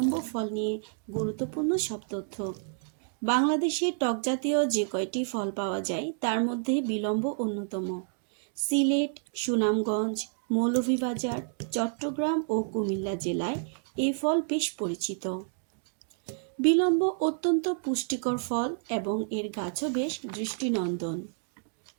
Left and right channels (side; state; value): left; silent; digital silence